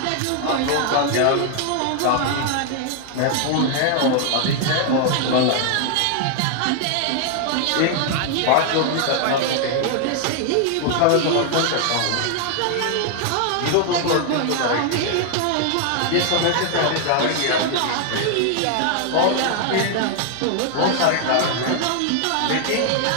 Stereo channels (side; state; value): both; different; correlation 0.00